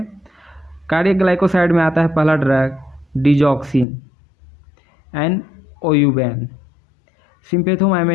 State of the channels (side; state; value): right; drops out; at 3.9 s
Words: cardiac glycoside में आता है पहला ड्रग डिजॉक्सिन एंड ओयूबैन।